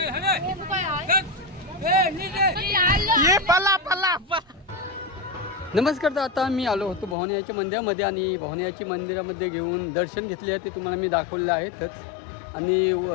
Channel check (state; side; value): drops out; right; at 7.2 s